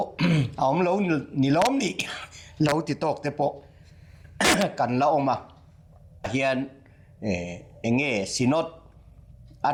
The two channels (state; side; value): identical; both; correlation 1.00